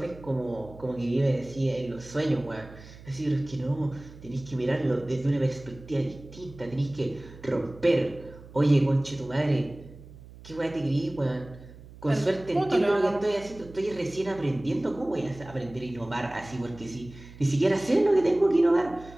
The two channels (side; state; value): right; noise; hum, 19 dB below the sound